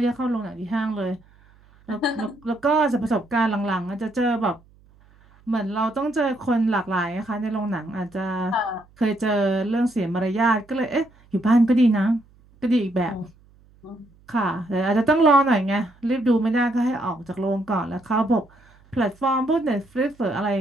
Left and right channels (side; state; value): right; noise; hum, 29 dB below the sound